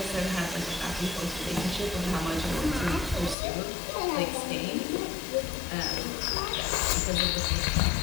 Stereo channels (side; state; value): right; drops out; at 3.4 s